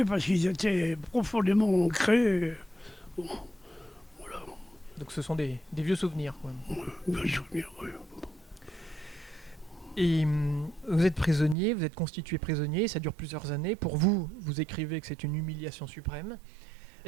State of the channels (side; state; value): left; drops out; at 11.6 s